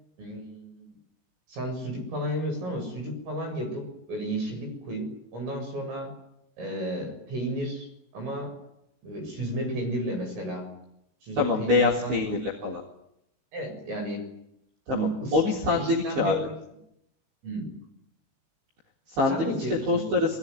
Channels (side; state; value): left; late; 19 ms